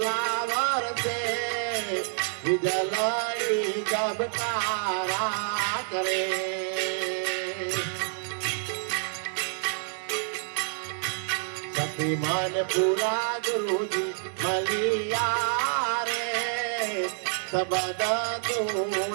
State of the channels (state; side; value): silent; left; digital silence